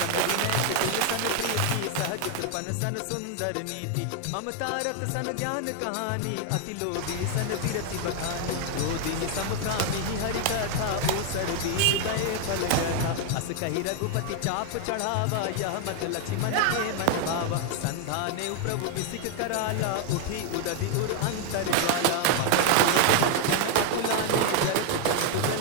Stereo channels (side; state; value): both; different; correlation 0.00